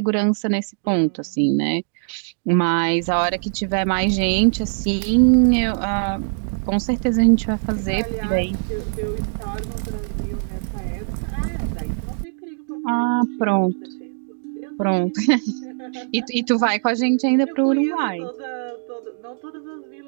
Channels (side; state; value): left; silent; digital silence